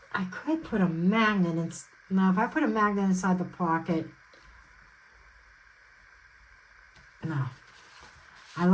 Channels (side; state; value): both; identical; correlation 1.00